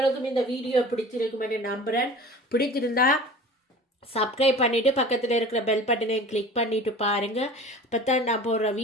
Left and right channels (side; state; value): both; normal; correlation 0.40